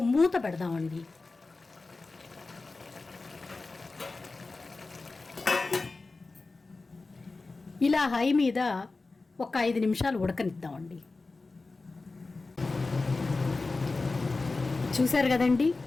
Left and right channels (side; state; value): right; quieter; 3.6 dB